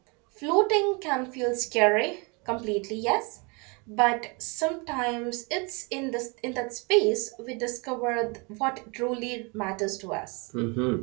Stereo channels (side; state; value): left; quieter; 30.8 dB